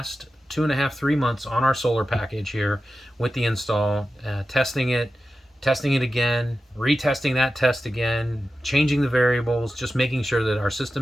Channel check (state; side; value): normal; both; correlation 0.92